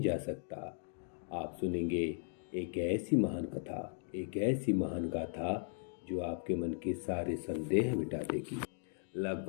जा सकता। आप सुनेंगे एक ऐसी महान गाथा जो आपके मन के सारे संदेह मिटा देगी।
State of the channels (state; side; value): silent; right; digital silence